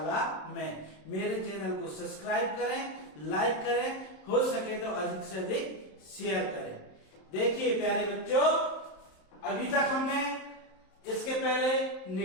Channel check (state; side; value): late; right; 27 ms